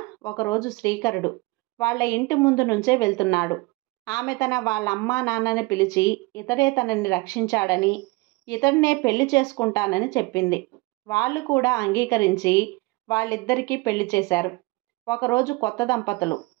ఒకరోజు శ్రీకరుడు వాళ్ళ ఇంటి ముందు నుంచే వెళ్తున్నాడు. ఆమె వాళ్ళ అమ్మా నాన్నని పిలిచి ఇతడే తనని రక్షించాడని, ఇతడినే పెళ్లి చేసుకుంటానని చెప్పింది. వాళ్ళు కూడా అంగీకరించి వాళ్ళిద్దరికీ పెళ్లి చేశారు. ఒకరోజు కొత్త దంపతులు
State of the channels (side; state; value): left; quieter; 23.7 dB